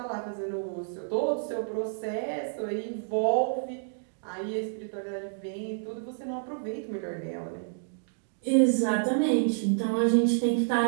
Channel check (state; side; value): silent; left; digital silence